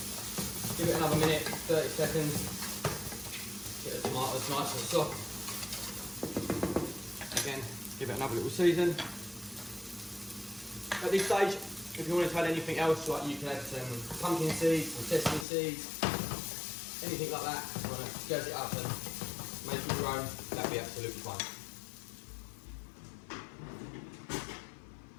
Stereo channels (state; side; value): drops out; right; at 15.5 s